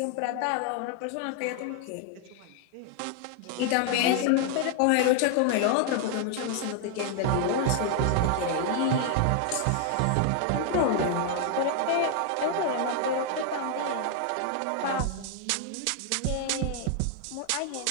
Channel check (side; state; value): both; different; correlation 0.00